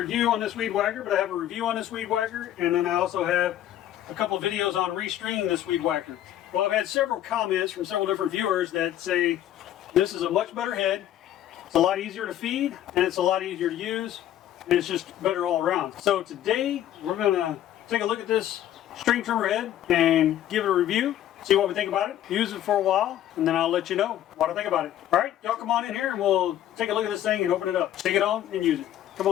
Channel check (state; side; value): quieter; right; 12.0 dB